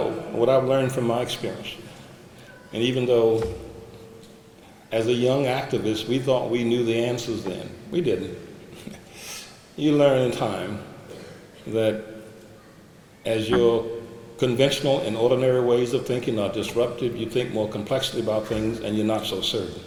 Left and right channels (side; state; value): both; identical; correlation 1.00